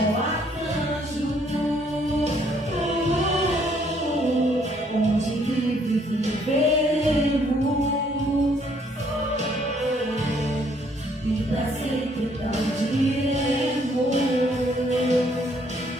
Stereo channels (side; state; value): both; normal; correlation 0.66